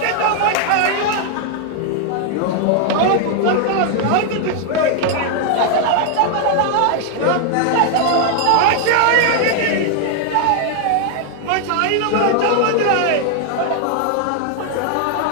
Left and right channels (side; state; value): both; different; correlation 0.00